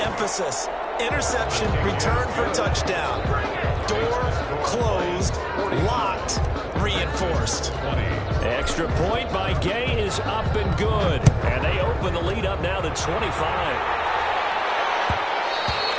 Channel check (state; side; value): identical; both; correlation 1.00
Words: interception, return for touchdown. Door closed, locked, reinforced. Extra point by Gay is up and good. And they open the lead up now to 25.